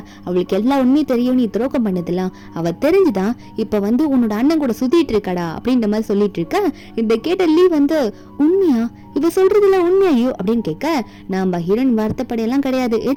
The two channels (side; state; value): both; identical; correlation 1.00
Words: அவளுக்கு எல்லா உண்மையும் தெரியும், நீ துரோகம் பண்ணதெல்லாம் அவ தெரிஞ்சுதான் இப்ப வந்து உன்னோட அண்ணன் கூட சுத்திட்டு இருக்கடா அப்படின்ற மாதிரி சொல்லிட்டு இருக்க. இந்த கேட்ட லீ வந்து உண்மையா இவ சொல்றதுல உண்மையோ அப்படின்னு கேட்க, நாம ஹீரோயின் வருத்தப்படையெல்லாம் கிடையாது,